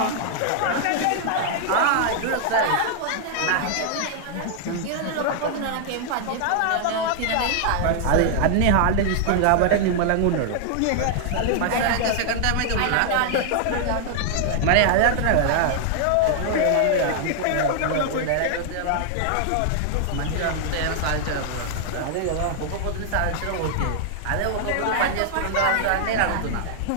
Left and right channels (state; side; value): different; both; correlation 0.00